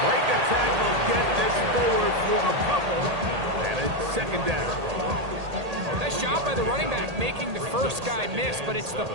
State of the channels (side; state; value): left; late; 1.8 ms